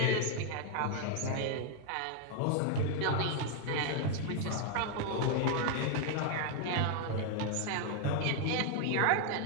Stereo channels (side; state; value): both; different; correlation 0.00